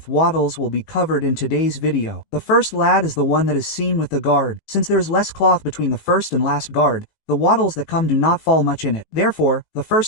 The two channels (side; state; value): right; late; 18 ms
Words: wattles will be covered in today's video. The first lad is the one that is seen with the guard. Since there is less cloth between the first and last guard, the wattles that come do not fall much in it. Therefore, the